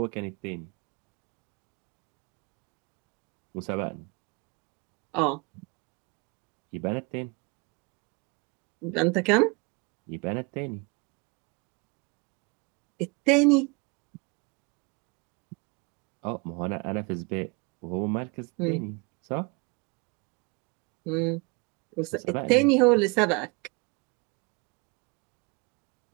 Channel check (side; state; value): left; quieter; 30.2 dB